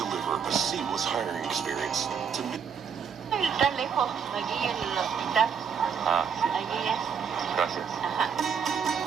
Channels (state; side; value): quieter; left; 6.9 dB